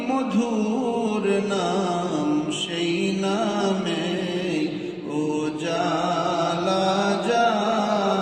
মধুর নাম সেই নামে উজালা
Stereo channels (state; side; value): identical; both; correlation 1.00